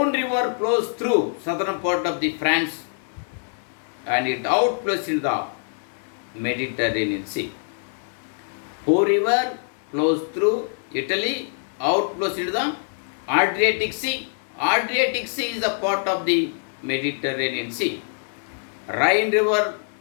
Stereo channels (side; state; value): right; silent; digital silence